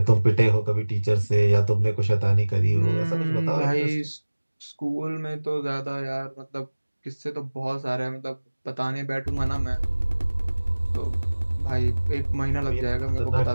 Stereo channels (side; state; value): both; inverted; correlation -1.00